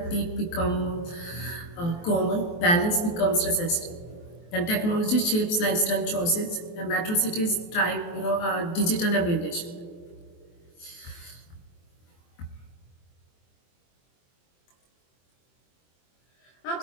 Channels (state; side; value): late; right; 23 ms